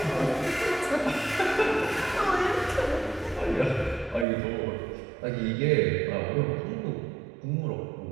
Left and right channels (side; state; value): left; drops out; at 4.2 s